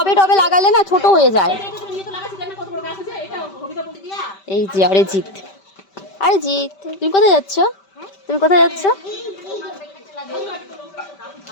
টবে লাগালে না ছোট হয়ে যায়। এই যে আরে জিৎ, আরে জিৎ, তুমি কোথায় যাচ্ছ? তুমি কোথায় যাচ্ছ?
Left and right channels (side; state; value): right; late; 5.1 ms